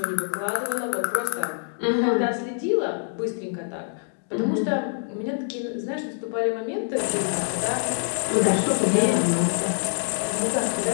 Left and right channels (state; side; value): silent; right; 62 dB below the other